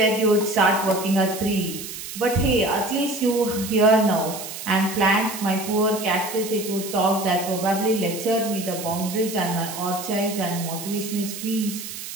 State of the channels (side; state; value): right; noise; hiss, 9 dB below the sound